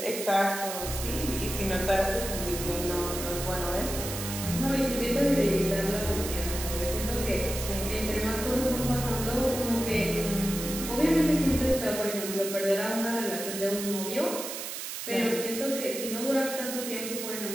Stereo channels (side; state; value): right; noise; hiss, 6 dB below the sound